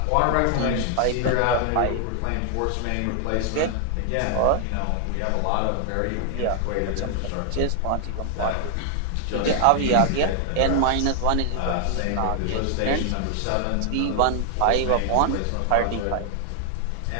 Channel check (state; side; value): different; both; correlation 0.00